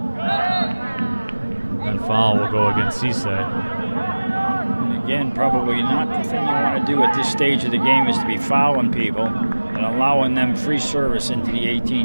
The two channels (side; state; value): both; inverted; correlation -1.00